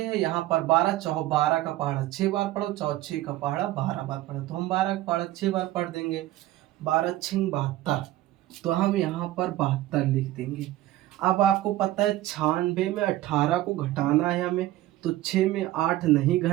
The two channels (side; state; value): left; quieter; 15.4 dB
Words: यहाँ पर 12, चाहो 12 का पहाड़ा 6 बार पढ़ो, चाहो 6 का पहाड़ा 12 बार पढ़ो, तो हम 12 का पहाड़ा 6 बार पढ़ देंगे। 12 छिंग 72, तो हम यहाँ पर 72 लिख देंगे। अब आपको पता है 96 में 18 को घटाना है हमें, तो 6 में 8 नहीं